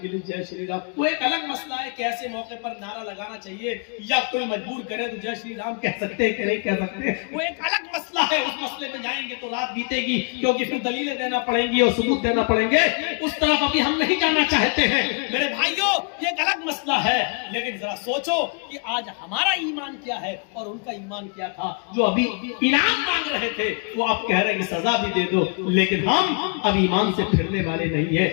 کے لیے جے شری رام. وہ ایک الگ مسئلہ ہے کہ ایسے موقع پر نعرہ لگانا چاہیے یا کوئی مجبور کرے تو جے شری رام کہہ سکتے ہیں کہ نہیں کہہ سکتے، وہ ایک الگ مسئلہ ہے. اس مسئلے پہ جائیں گے تو رات بیتے گی، کیونکہ پھر دلیلیں دینا پڑیں گی اور ثبوت دینا پڑیں گے. اس طرف ابھی ہم نہیں جانا چاہتے ہیں. میرے بھائیوں یہ ایک الگ مسئلہ ہے، لیکن ذرا سوچو کہ آج ہمارا ایمان کیا ہے اور ان کا ایمان کیا تھا. جو ابھی انعام مانگ رہے تھے وہ آپ کہہ رہے ہیں کہ سزا بھی دے دو، لیکن ہم اب ایمان سے پھرنے والے نہیں ہیں.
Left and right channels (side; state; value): right; quieter; 36.1 dB